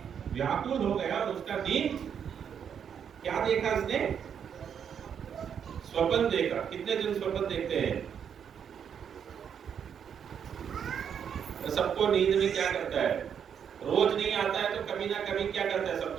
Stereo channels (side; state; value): left; quieter; 7.9 dB